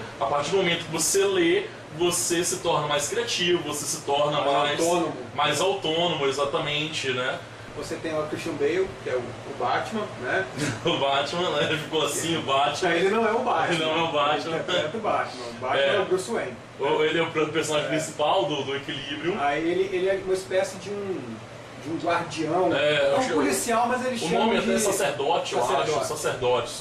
a partir do momento que você lê, você se torna mais criativo, você se torna mais autônomo, exatamente, né? Você tem o Christian Bale, que é o Batman, né? O Batman, né? Ficou assim, o Batman. Ele não é o Batman. Ele não é o Batman. Ele interpreta o Batman. O Batman é o Bruce Wayne. Ele é o personagem principal do Equilibrium. Aí ele é uma espécie de um guardião, um policial, mas ele chama de... O nome até é sacerdote, eu acho.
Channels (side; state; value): both; identical; correlation 1.00